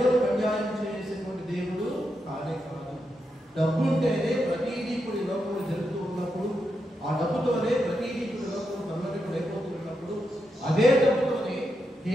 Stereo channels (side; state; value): both; normal; correlation 0.84